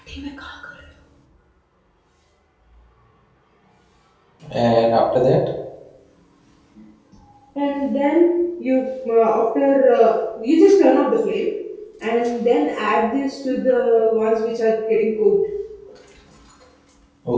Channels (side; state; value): both; identical; correlation 1.00